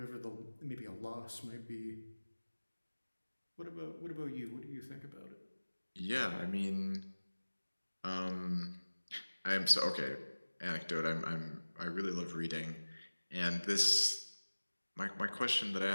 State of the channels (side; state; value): both; inverted; correlation -1.00